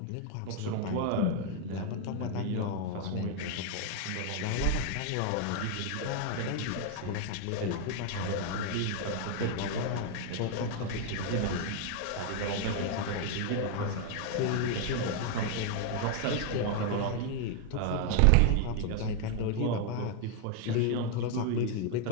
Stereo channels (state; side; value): different; both; correlation 0.00